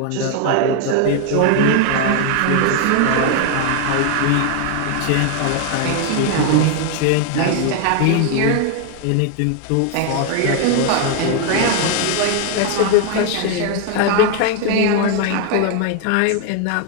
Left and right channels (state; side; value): different; both; correlation 0.01